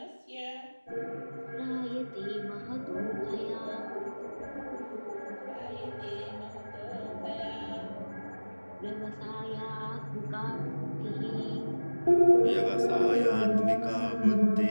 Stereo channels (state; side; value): inverted; both; correlation -1.00